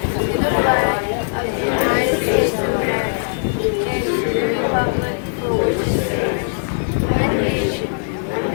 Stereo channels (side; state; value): right; silent; 66 dB below the other